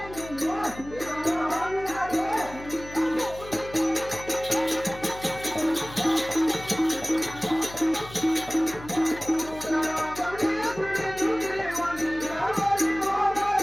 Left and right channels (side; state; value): left; noise; hum, 16 dB below the sound